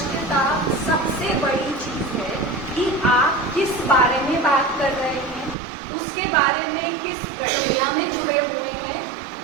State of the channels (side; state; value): left; drops out; at 5.6 s